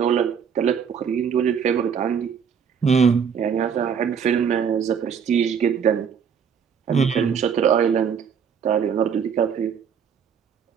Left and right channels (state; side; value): quieter; left; 7.2 dB